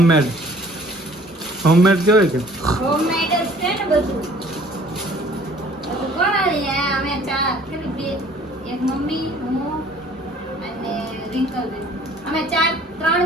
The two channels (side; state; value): both; normal; correlation 0.54